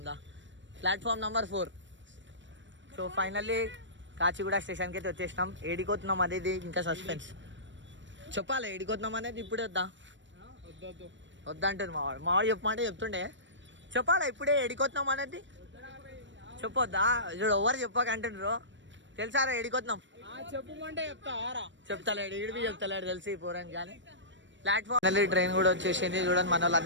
దా. Platform number 4. So finally Kacheguda స్టేషన్కి అయితే వచ్చేసినాం. ఏడిపోతున్నాం అనేది ఇంకా సస్పెన్స్. చెప్పాలి ఏడిపోతున్నాం అనేది. ఇప్పుడే వద్దంటుంది మావాడు చెప్పమంటే చెప్తుండే. చెప్పాలా ఇప్పుడే ఏడిపోతున్నాం అనేది చెప్పొద్దా? చూడు ఎవరు చెప్పకంటుండ్రు. తెలుసారా ఏడిపోతున్నాం? చెప్తాలేడు ఈడిపి చెప్తాలేడు తెలిసి పోరాని. కానీ ప్లాట్ఫామ్ ట్రైన్ కూడా వచ్చేసింది. చూడండి మన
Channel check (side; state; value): left; late; 0.54 ms